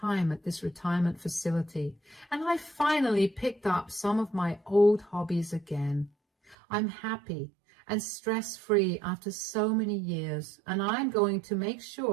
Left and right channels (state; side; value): drops out; left; at 6.6 s